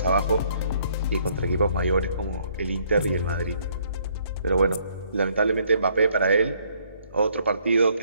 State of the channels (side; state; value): both; inverted; correlation -0.66